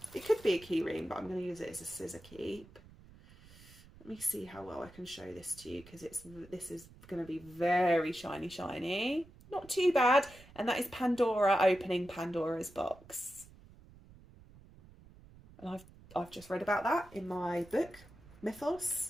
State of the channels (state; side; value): noise; right; rumble, 22 dB below the sound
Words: It could be a key ring, but I'm going to use it as a scissor keep. Let me see how well I can show this to you, because this is going to be very shiny. Not too bad. And that is Pandora opening Pandora's box. And I've just read about that in my book, Mythos.